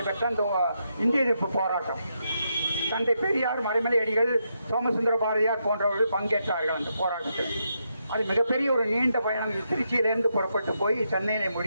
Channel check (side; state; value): both; inverted; correlation -0.81